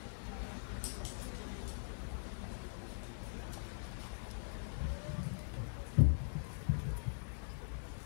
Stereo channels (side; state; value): right; silent; digital silence